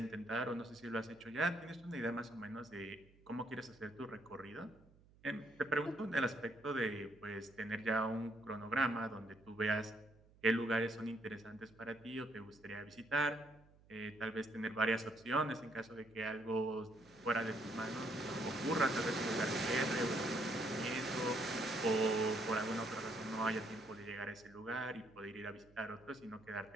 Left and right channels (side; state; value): right; noise; hum, 27 dB below the sound